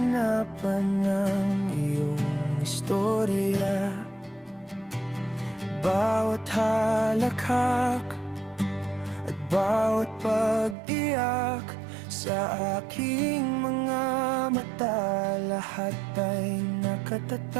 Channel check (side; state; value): left; drops out; at 10.8 s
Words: ng iyong istorya. Bawat halakhak at bawat pag-iyak sa aking mga mata, lahat ay